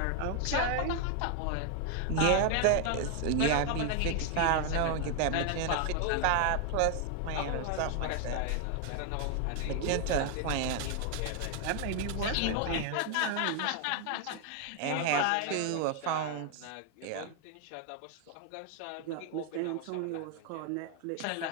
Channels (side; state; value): both; different; correlation 0.00